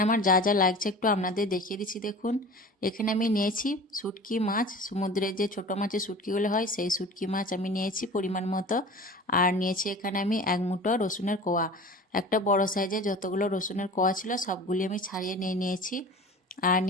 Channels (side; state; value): both; normal; correlation 0.38